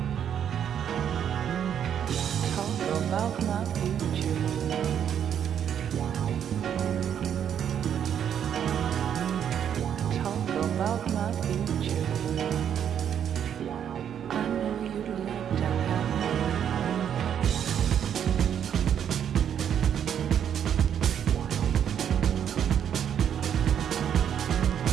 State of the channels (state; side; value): quieter; left; 9.0 dB